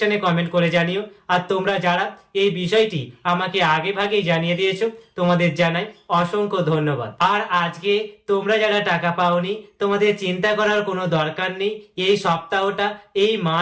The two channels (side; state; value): both; identical; correlation 1.00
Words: কমেন্ট করে জানিও। আর তোমরা যারা এই বিষয়টি আমাকে আগে ভাগেই জানিয়ে দিয়েছো, তোমাদের জানাই অসংখ্য ধন্যবাদ। আর আজকে তোমরা যারা টাকা পাওনি, তোমাদের চিন্তা করার কোনো দরকার নেই। এই সপ্তাহটা, এই